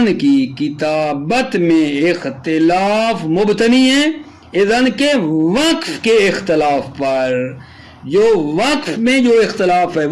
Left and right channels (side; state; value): both; identical; correlation 1.00